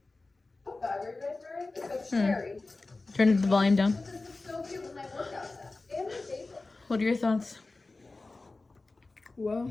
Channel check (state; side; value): quieter; right; 3.4 dB